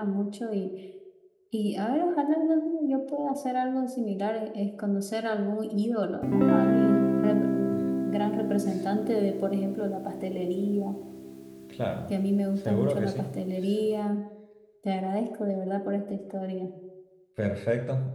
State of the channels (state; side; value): identical; both; correlation 1.00